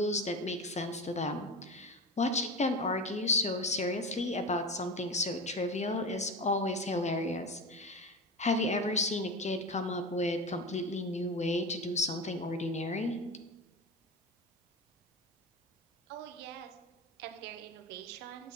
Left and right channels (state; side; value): normal; both; correlation 0.25